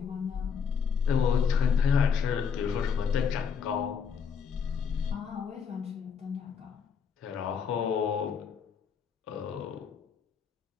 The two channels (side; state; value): right; quieter; 6.6 dB